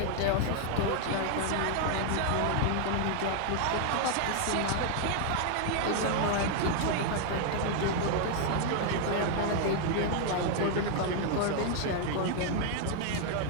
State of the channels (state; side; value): different; both; correlation 0.00